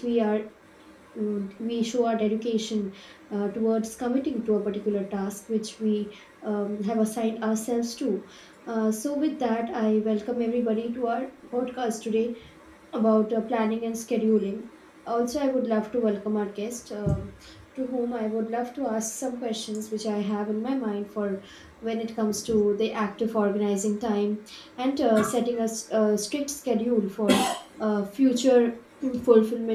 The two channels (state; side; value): identical; both; correlation 1.00